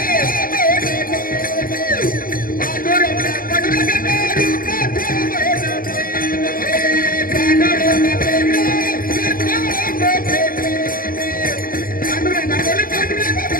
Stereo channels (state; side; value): late; right; 0.41 ms